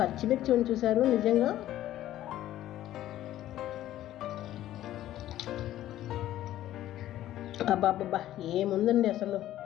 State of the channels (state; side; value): quieter; right; 13.4 dB